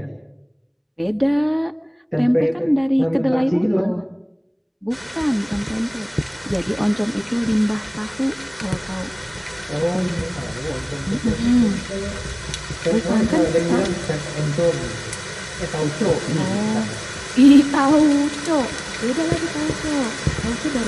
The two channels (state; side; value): identical; both; correlation 1.00